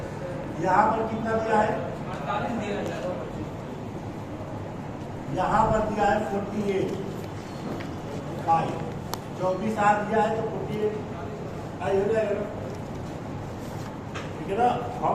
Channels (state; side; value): identical; both; correlation 1.00